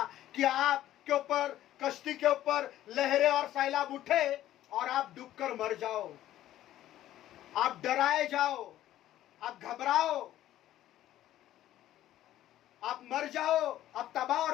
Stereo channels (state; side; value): quieter; right; 13.3 dB